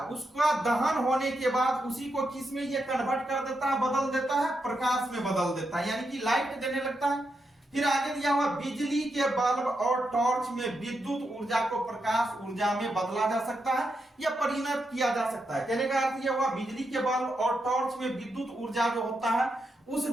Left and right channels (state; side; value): normal; both; correlation 0.84